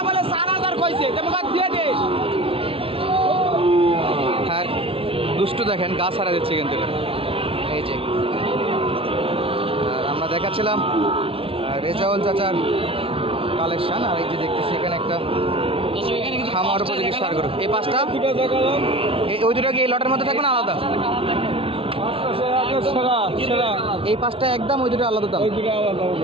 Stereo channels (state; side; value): late; left; 0.26 ms